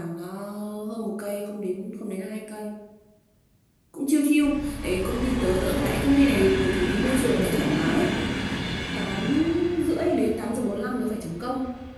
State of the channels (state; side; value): identical; both; correlation 1.00